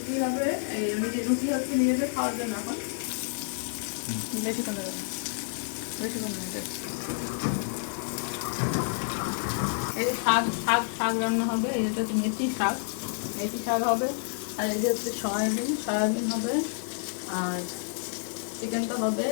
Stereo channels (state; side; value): silent; right; 59 dB below the other